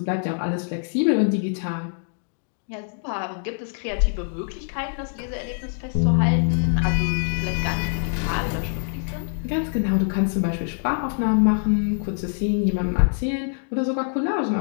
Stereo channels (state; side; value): silent; right; 62 dB below the other